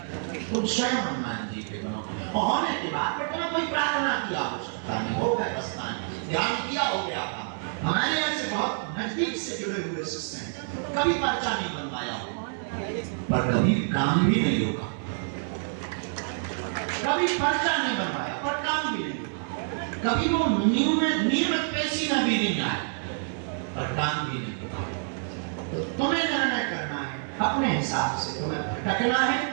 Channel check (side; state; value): left; silent; 60 dB below the other